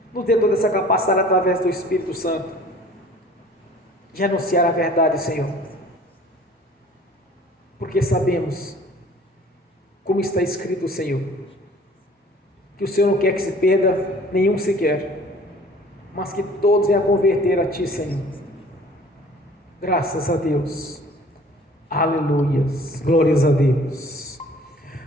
Nos dê toda essa capacidade através do Espírito Santo de anunciar a verdade, Senhor. Porque sabemos, como está escrito, Senhor, que o Senhor não quer que se perda nenhum sequer, mas que todos venham a converter a Ti, Senhor. Graças a Deus. Aleluias. Glórias a Deus.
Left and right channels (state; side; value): normal; both; correlation 0.50